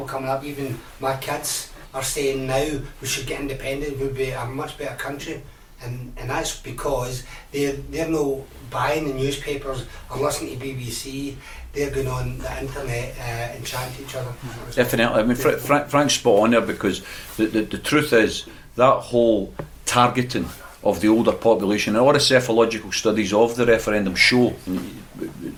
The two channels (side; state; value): both; identical; correlation 1.00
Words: coming up, even my kids, are saying now we should get independent, we'll be a much better country, and that's because they're not buying the newspapers or listening to BBC. They're going on the internet and chatting to each other. Definitely. I mean, Frank's spot on there, because the truth is that whole targeting of the older population, and all the psychological studies of the referendum show,